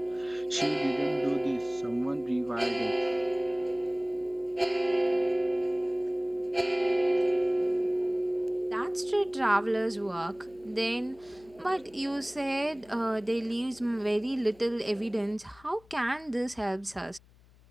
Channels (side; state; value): left; noise; hum, 27 dB below the sound